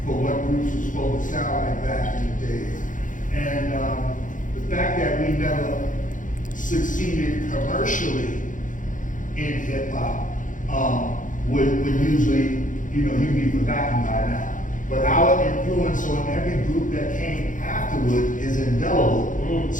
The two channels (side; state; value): right; late; 0.38 ms